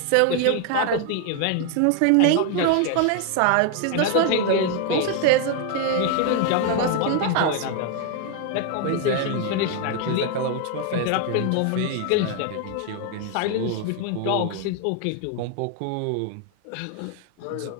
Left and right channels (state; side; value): different; both; correlation 0.01